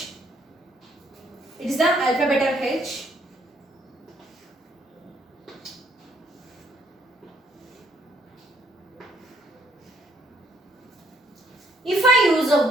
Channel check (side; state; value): both; normal; correlation 0.69